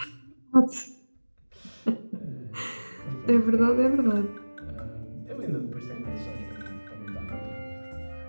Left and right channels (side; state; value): both; inverted; correlation -1.00